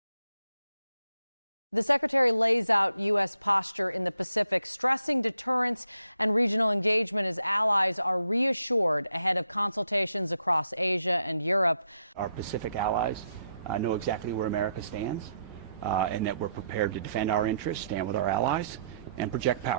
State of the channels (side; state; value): both; inverted; correlation -0.76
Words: the Secretary lays out U.S. posture in the Pacific, stressing deterrence and regional engagement as allies are reassured ahead of consultations across Asia and Europe. Our Pacific allies know exactly where America stands and that we're prepared to defend our interests, stand with our allies, and project